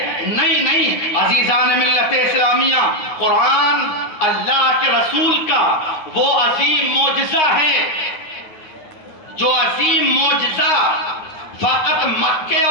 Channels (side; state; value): right; late; 9.7 ms